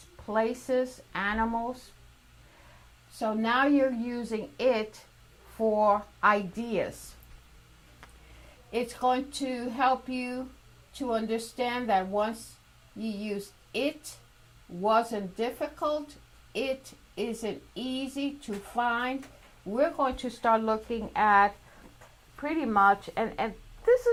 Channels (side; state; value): both; identical; correlation 1.00